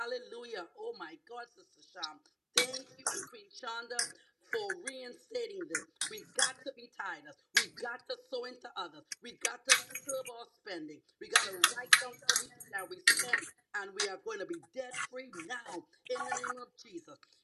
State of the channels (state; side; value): identical; both; correlation 1.00